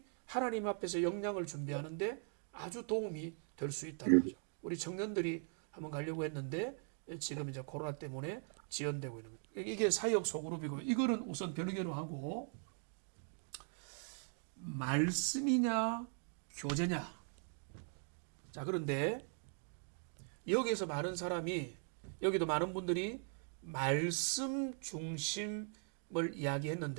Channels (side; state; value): left; silent; 51 dB below the other